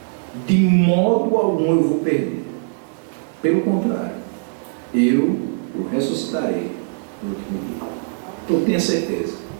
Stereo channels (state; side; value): silent; left; digital silence